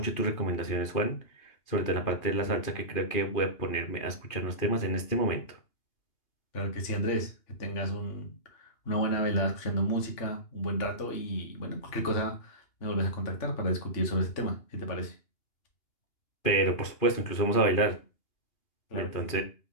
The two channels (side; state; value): right; late; 2.8 ms